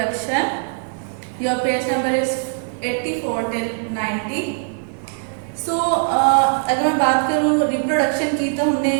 Your page number is 84 till 90. अगर मैं बात करूँ reproduction की तो हमने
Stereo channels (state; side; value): silent; left; digital silence